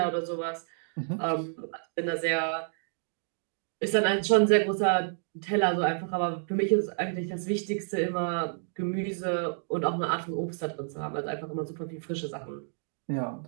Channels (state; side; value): silent; left; digital silence